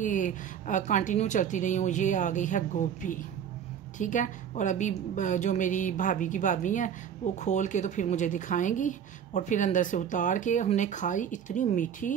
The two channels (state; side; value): quieter; left; 8.5 dB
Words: कंटिन्यू चलती रही हूँ। ये आ गई है गोभी, ठीक है। और अभी जो मेरी भाभी की भाभी हैं वो खोल के तो फिर मुझे दिखाएंगी और फिर अंदर से उतार के हमने खाई। इतनी